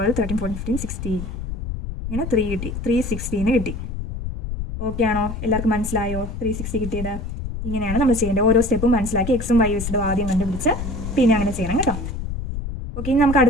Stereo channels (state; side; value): noise; left; rumble, 6 dB below the sound